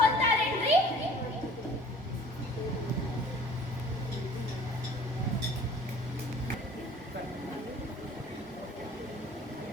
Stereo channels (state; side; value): normal; both; correlation 0.48